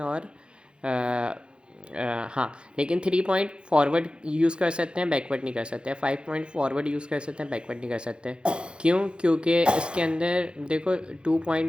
और हाँ, लेकिन 3 पॉइंट फॉरवर्ड यूज़ कर सकते हैं, बैकवर्ड नहीं कर सकते। 5 पॉइंट फॉरवर्ड यूज़ कर सकते हैं, बैकवर्ड नहीं कर सकते। क्यों? क्योंकि इसके अंदर देखो 2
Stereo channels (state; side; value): late; left; 0.054 ms